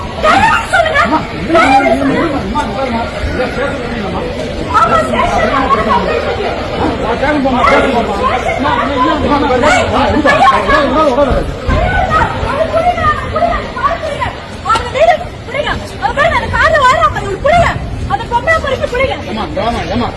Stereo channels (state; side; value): identical; both; correlation 1.00